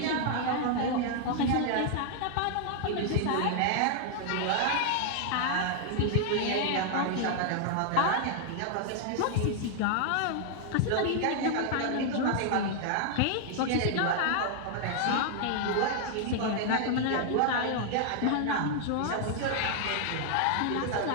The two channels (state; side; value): different; both; correlation 0.00